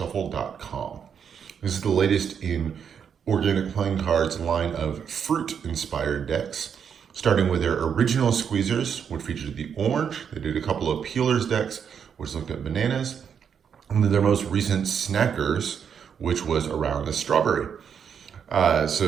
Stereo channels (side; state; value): left; quieter; 7.5 dB